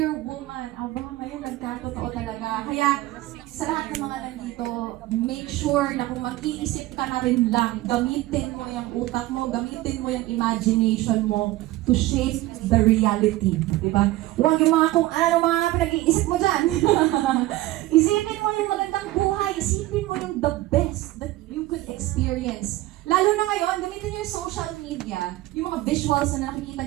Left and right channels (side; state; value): left; quieter; 17.2 dB